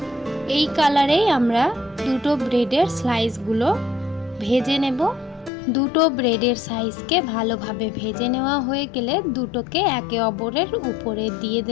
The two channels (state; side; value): drops out; right; at 5.5 s